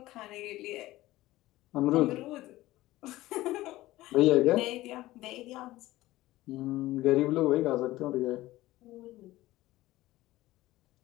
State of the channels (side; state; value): right; quieter; 17.0 dB